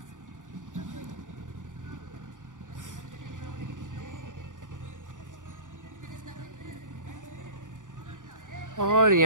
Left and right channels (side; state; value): left; late; 0.87 ms